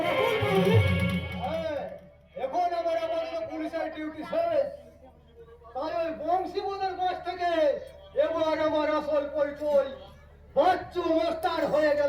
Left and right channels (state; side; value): identical; both; correlation 1.00